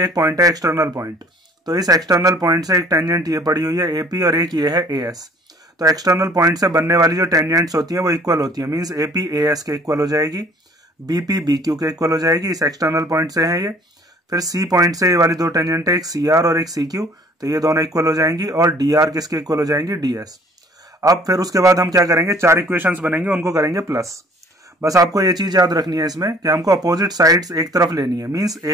एक पॉइंट है एक्सटर्नल पॉइंट, तो इस एक्सटर्नल पॉइंट से एक टेंजेंट ये पड़ी हुई है AP और एक ये है AS। तो एक्सटर्नल पॉइंट से बनने वाली जो टेंजेंट्स होती हैं वो इक्वल होती है, मींस AP AS के इक्वल हो जाएगी, BP BQ के इक्वल हो जाएगी। इस एक्सटर्नल पॉइंट से है ये। फिर C पॉइंट से ये वाली दो टेंजेंट है, एक CR और एक CQ, तो ये दोनों इक्वल हो जाएंगी और DR किसके इक्वल हो जाएंगी, DS। अब फिर उसके बाद हम क्या करेंगे, 4 इक्वेशंस बनेंगे, उनको करेंगे प्लस। बस आपको ये चीज याद रखनी है इसमें कि हमको अपोजिट साइड्स एक तरफ लेनी है, मींस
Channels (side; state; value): both; normal; correlation 0.54